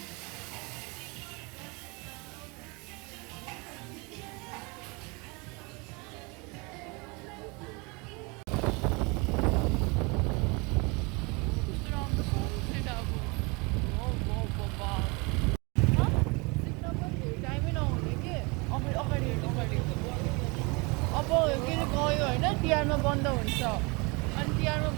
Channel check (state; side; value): quieter; left; 28.4 dB